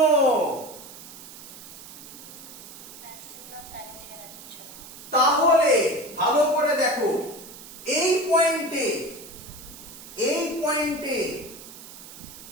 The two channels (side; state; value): right; noise; hiss, 15 dB below the sound